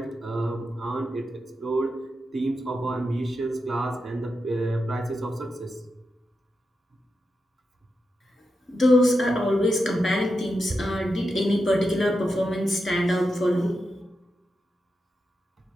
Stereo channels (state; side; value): normal; both; correlation 0.88